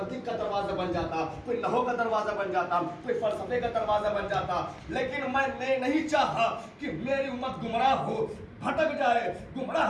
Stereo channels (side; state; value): both; identical; correlation 1.00